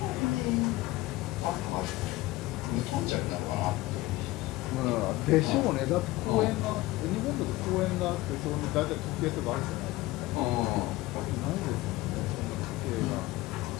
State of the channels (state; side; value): quieter; right; 18.6 dB